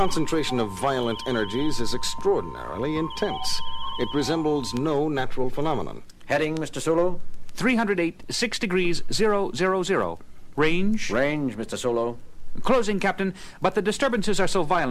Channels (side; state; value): both; identical; correlation 1.00